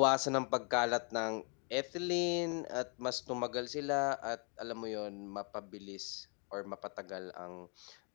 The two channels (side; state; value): right; quieter; 37.7 dB